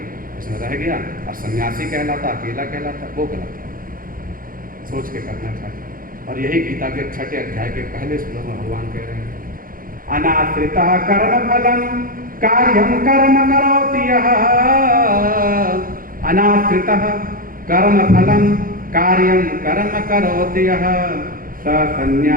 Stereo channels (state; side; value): late; left; 0.41 ms